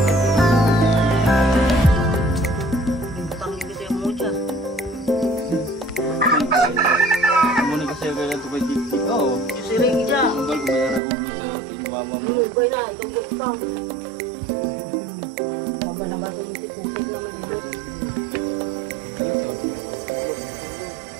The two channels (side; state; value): left; drops out; at 11.0 s